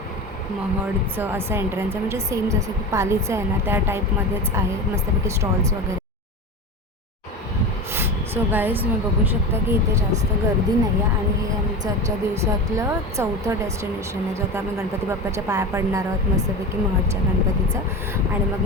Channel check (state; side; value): normal; both; correlation 0.26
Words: महडचं असं एंट्रन्स आहे, म्हणजे सेम जसं की पालीचं आहे ना त्या टाईपमध्येच आहे. मस्तपैकी स्टॉल्स वगैरे. सो गाईज तुम्ही बघू शकता की इथे जास्त गर्दी नाही आहे. आणि हे आमचं आजच्या दिवसातलं 4थं डेस्टिनेशन आहे, जो आता आम्ही गणपती बाप्पाच्या पाया पडणार आहोत मस्तपैकी महडच्या गणपतीचं. आणि मग